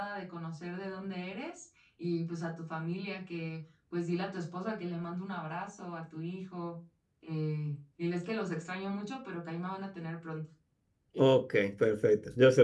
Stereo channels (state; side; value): identical; both; correlation 1.00